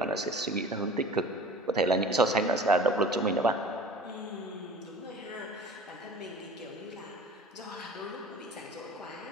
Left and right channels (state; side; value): normal; both; correlation 0.42